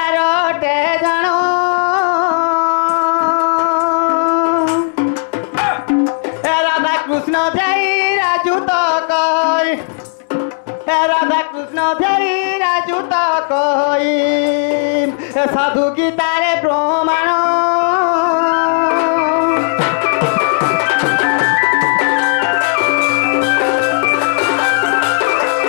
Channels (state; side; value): silent; right; digital silence